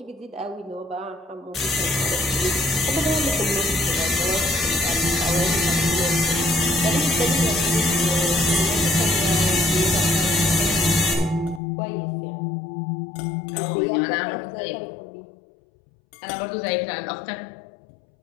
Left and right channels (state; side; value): drops out; right; at 11.6 s